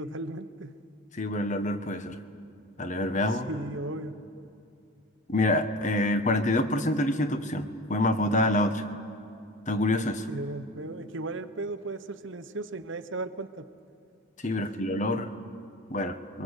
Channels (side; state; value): both; normal; correlation 0.35